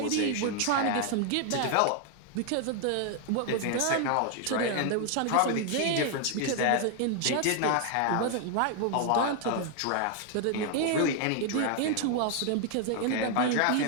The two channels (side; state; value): both; different; correlation 0.00